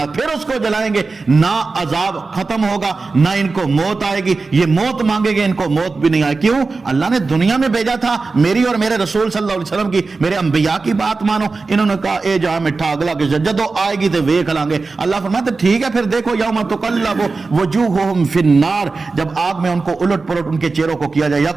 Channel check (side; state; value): left; quieter; 4.0 dB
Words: پھر اس کو جلائیں گے. نہ عذاب ختم ہوگا، نہ ان کو موت آئے گی. یہ موت مانگے گے، ان کو موت بھی نہیں آئے. کیوں؟ اللہ نے دنیا میں بھیجا تھا میری اور میرے رسول صلی اللہ علیہ وسلم کی، میرے انبیاء کی بات مانو. انہوں نے کہا اے جہاں مٹھا اگلا کہ جدو آئے گی تو ویکھ لیں گے. اللہ فرماتے ٹھیک ہے پھر دیکھو یوم تقلب وجوہہم فی النار، جب آگ میں ان کو الٹ پلٹ ان کے چہروں کو کیا جائے.